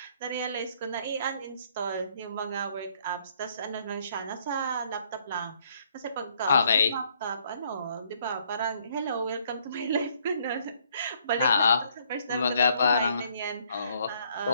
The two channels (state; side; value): inverted; both; correlation -0.67